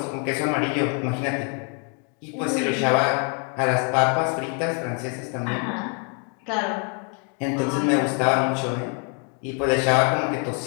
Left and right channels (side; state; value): right; quieter; 39.5 dB